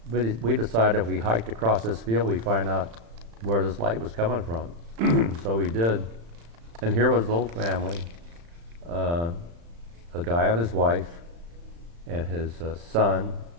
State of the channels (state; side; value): late; left; 35 ms